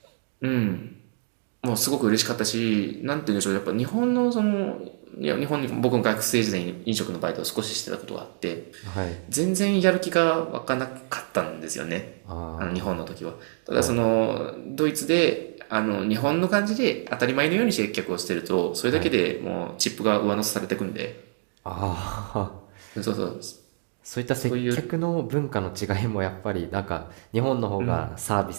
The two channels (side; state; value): left; silent; digital silence